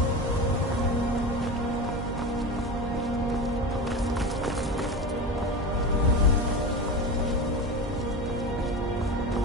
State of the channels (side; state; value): both; normal; correlation 0.25